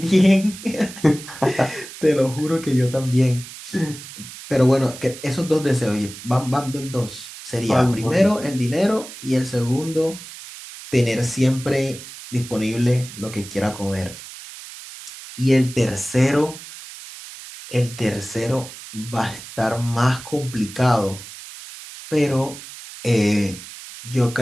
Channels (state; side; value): noise; right; hiss, 14 dB below the sound